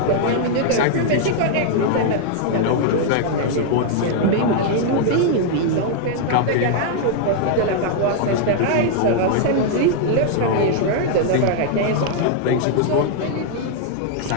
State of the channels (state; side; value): different; both; correlation 0.00